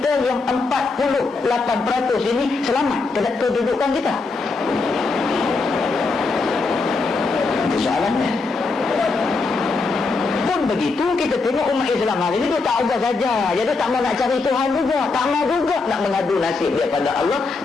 yang 48% ini selamat kedudukan kita? Itu soalannya. Pun begitu, kita tengok umat Islam hari ini dia tak ubah saja. Jadi tak mau nak cari Tuhan juga, tak mau juga nak mengadu nasib daripada Allah,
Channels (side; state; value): right; quieter; 4.0 dB